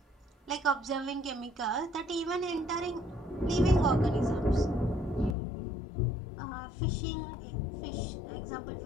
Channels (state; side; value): drops out; right; at 5.4 s